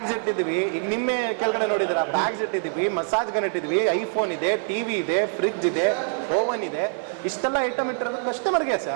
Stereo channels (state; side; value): silent; left; 62 dB below the other